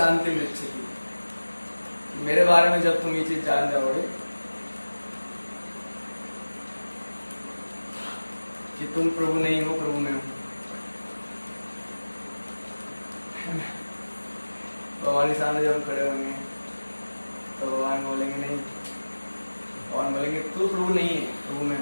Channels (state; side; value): inverted; both; correlation -1.00